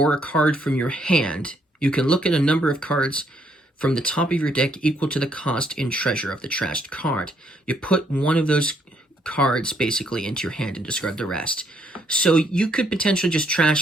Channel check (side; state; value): both; normal; correlation 0.71